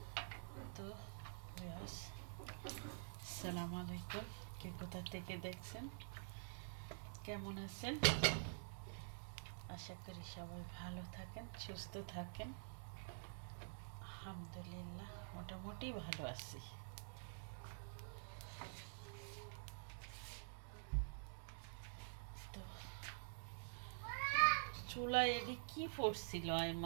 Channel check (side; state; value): left; silent; digital silence